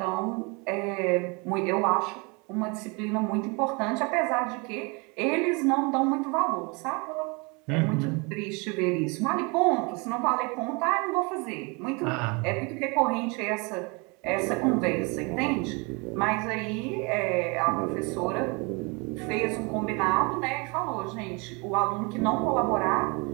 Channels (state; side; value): quieter; left; 30.0 dB